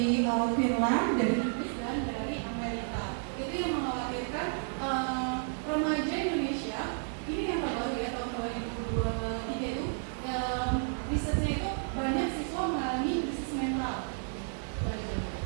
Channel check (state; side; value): silent; left; 57 dB below the other